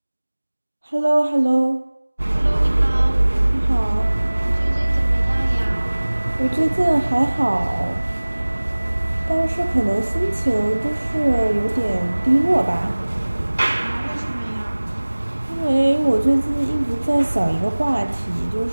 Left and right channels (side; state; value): both; inverted; correlation -1.00